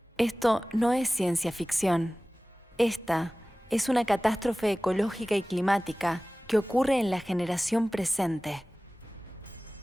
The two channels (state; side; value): normal; both; correlation 0.98